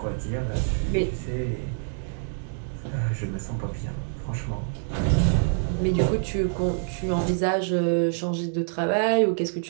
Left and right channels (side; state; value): left; silent; digital silence